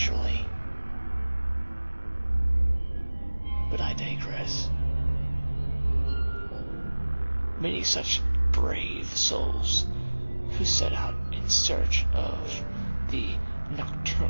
But I digress. Many such brave souls who set out in search of the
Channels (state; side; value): inverted; both; correlation -1.00